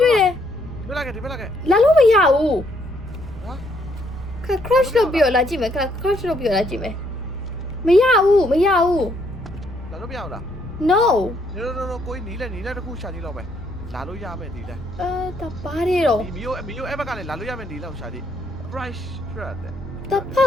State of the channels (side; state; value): left; noise; rumble, 18 dB below the sound